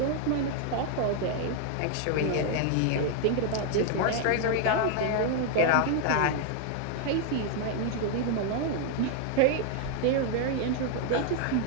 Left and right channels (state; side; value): different; both; correlation 0.00